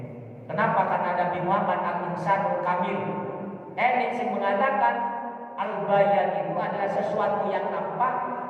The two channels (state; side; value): identical; both; correlation 1.00